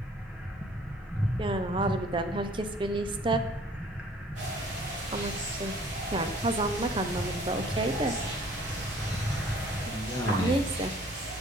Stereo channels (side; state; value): both; normal; correlation 0.55